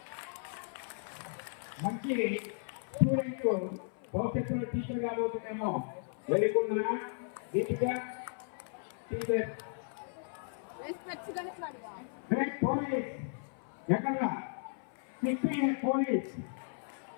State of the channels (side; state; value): right; silent; 54 dB below the other